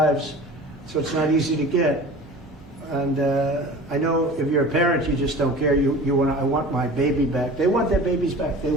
So it's not easy to get. And I know if you're a parent, you just don't care. I want my baby back. They want their babies back. They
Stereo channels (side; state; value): both; normal; correlation 0.39